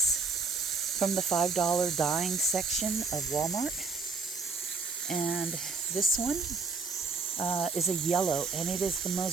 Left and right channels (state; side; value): quieter; left; 4.4 dB